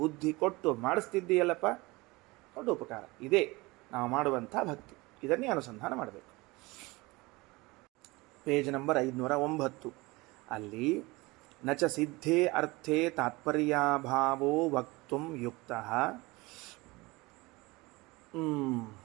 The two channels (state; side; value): quieter; left; 22.8 dB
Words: ಕೊಟ್ಟು ಮಾಡಿಸ್ತಿದ್ದೀಯಲ್ಲಪ್ಪ, ದೊಡ್ಡ ಉಪಕಾರ. ಇದೇ ನಾವು ಮಾಡುವಂಥ ಭಕ್ತಿ, ಇದನ್ನೇ ಅನುಸಂಧಾನ ಮಾಡಬೇಕು. ಪೇಜ್ ನಂಬರ್ 509 ಅಲ್ಲಿ ನಚ ಸಿದ್ಧೇ ಅರ್ಥೇ ತಾತ್ಪರ್ಯಾಭಾವೋ ವಕ್ತುಂ ಯುಕ್ತಃ